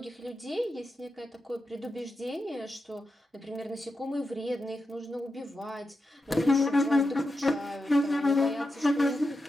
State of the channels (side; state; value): both; normal; correlation 0.89